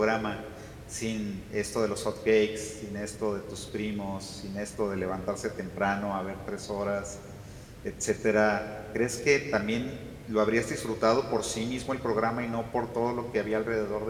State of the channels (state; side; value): identical; both; correlation 1.00